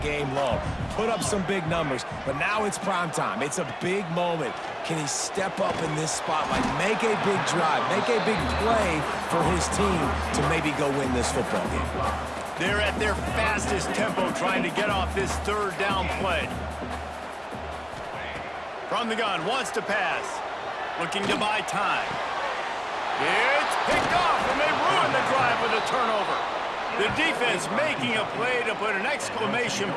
long. Put up some big numbers, but now it's prime time. It's a big moment. Can he step up in this spotlight, make a big drive, make a big play for his team to maybe go win this football game? They're at their fastest tempo trying to get off this 3rd down play. From the gun, wants to pass. Looking to buy time. It's picked off, and they ruin the drive with a turnover. The defense making a play to put an exclamation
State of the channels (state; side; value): identical; both; correlation 1.00